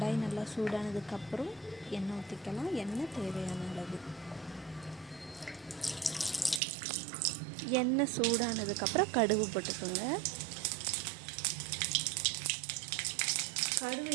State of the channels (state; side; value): drops out; left; at 6.6 s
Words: நல்லா சூடானதுக்கப்புறம் எண்ணெய் ஊற்றிக்கலாம். எண்ணெய் தேவையான அளவு. எண்ணெய் சூடானதுக்கப்புறம் கடுகு போட்டுக்கோங்க. கடுகு